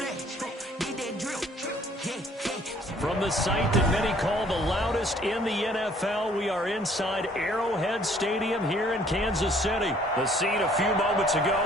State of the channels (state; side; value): normal; both; correlation 0.59